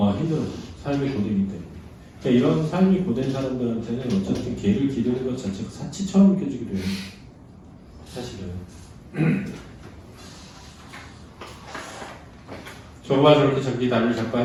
힘들어서. 삶이 고되기 때문에. 그러니까 이런 삶이 고된 사람들한테는 어쨌든 개를 기르는 것 자체가 사치처럼 느껴지기도 해요. 사실은. 저가 저렇게 자기 다리를 잡고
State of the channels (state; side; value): identical; both; correlation 1.00